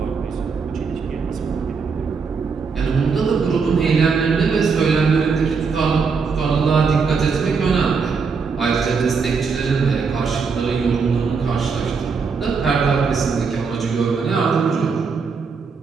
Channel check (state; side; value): quieter; left; 5.3 dB